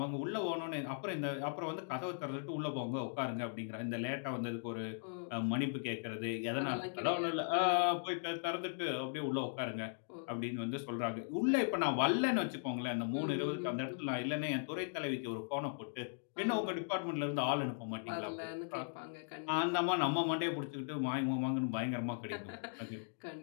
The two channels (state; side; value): silent; right; digital silence